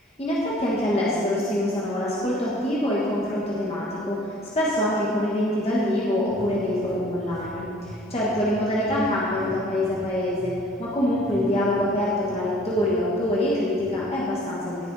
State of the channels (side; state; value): both; normal; correlation 0.52